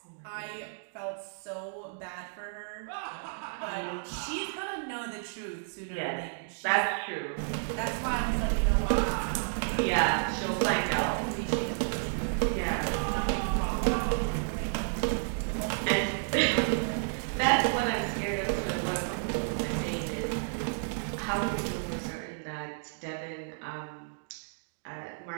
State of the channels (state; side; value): silent; left; digital silence